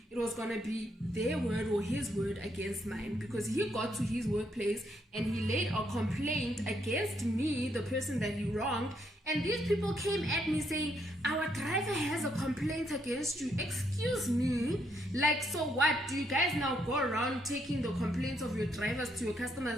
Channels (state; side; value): normal; both; correlation 0.75